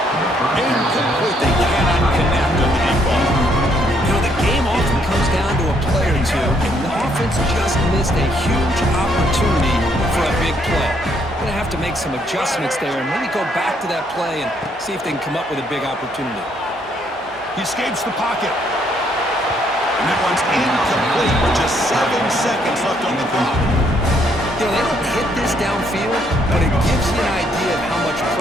Incomplete. They cannot connect on the deep ball. You know, the game often comes down to a play or two, and the offense just missed a huge opportunity for a big play. Going to have to make some adjustments there and maybe go back to that play and see if they can come up with a big opportunity. He escapes the pocket. And that one's incomplete with just 7 seconds left on the clock. You know, they don't hit this downfield, but it gives you an idea of how much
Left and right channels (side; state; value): both; normal; correlation 0.70